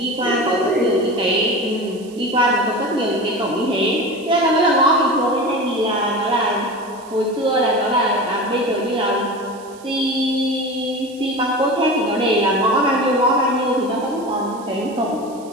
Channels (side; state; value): right; noise; hiss, 24 dB below the sound